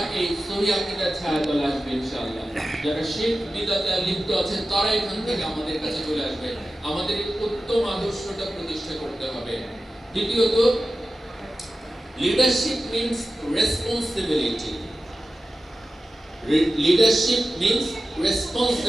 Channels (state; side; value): normal; both; correlation 0.94